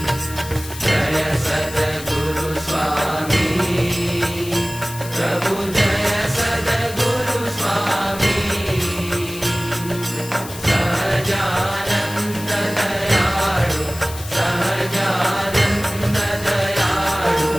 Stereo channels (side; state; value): left; noise; hiss, 13 dB below the sound